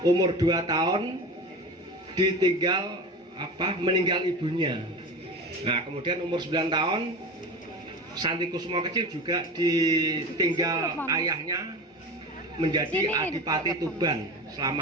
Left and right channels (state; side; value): normal; both; correlation 0.30